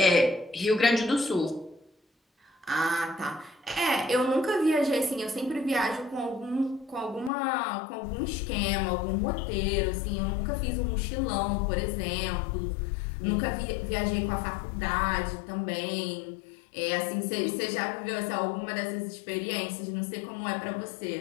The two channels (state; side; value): drops out; right; at 7.3 s